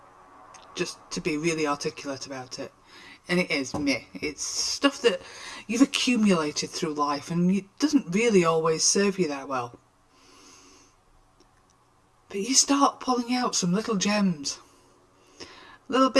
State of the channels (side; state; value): both; identical; correlation 1.00